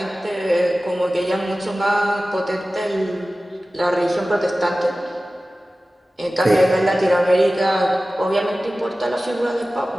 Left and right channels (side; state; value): both; normal; correlation 0.96